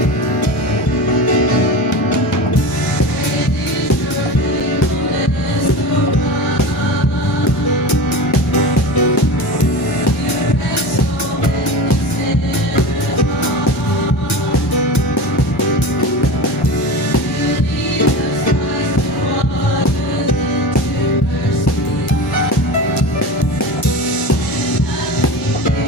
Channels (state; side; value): normal; both; correlation 0.30